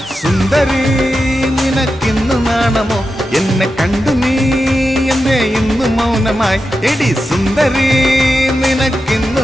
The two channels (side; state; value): both; normal; correlation 0.90